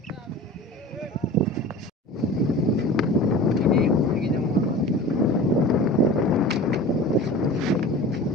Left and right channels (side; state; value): both; normal; correlation 0.36